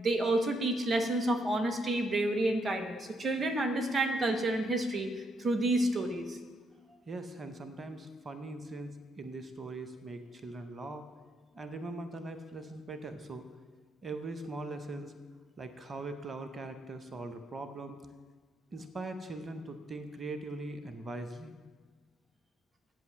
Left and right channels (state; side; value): normal; both; correlation 0.76